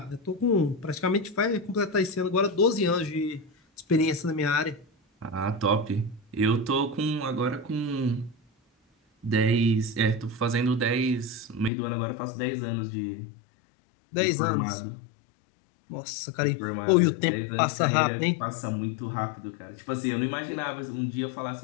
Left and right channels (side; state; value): right; drops out; at 11.7 s